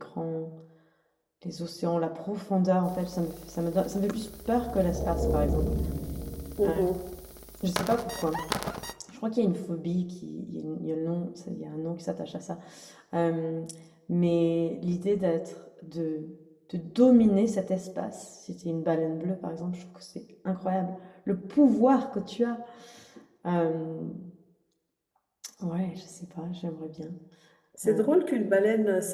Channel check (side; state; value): both; identical; correlation 1.00